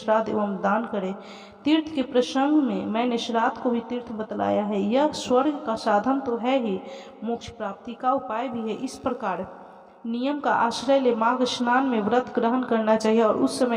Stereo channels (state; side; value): identical; both; correlation 1.00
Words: एवं दान करें। तीर्थ के प्रसंग में मैंने श्राद्ध को भी तीर्थ बतलाया है। यह स्वर्ग का साधन तो है ही, मोक्ष प्राप्ति का उपाय भी है। इस प्रकार नियम का आश्रय ले माघ स्नान में व्रत ग्रहण करना चाहिए और उस